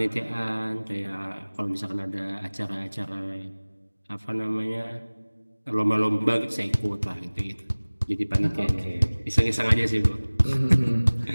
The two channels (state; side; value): inverted; both; correlation -1.00